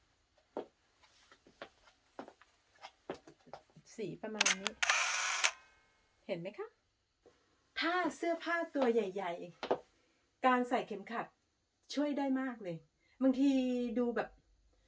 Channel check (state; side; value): identical; both; correlation 1.00